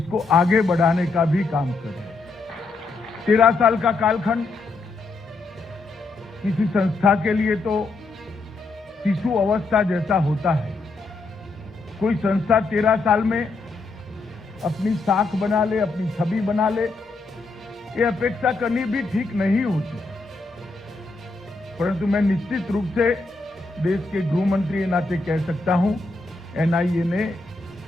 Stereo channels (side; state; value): right; quieter; 3.6 dB